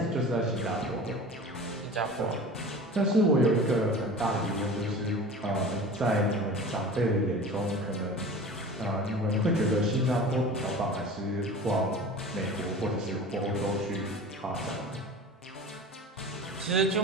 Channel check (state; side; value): normal; both; correlation 0.37